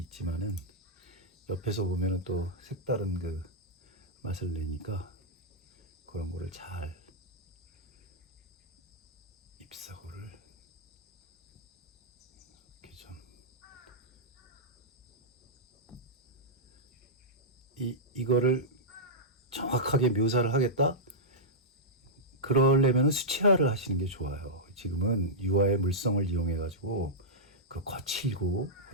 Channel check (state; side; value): normal; both; correlation -0.11